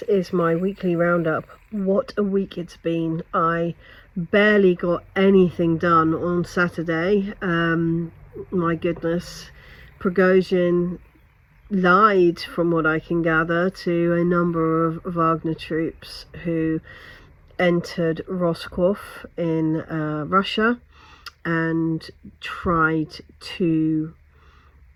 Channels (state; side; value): identical; both; correlation 1.00